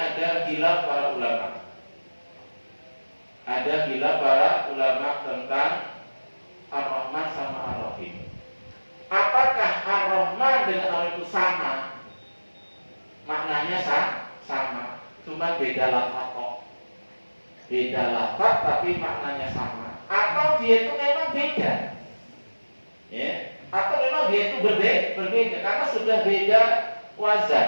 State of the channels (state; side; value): inverted; both; correlation -1.00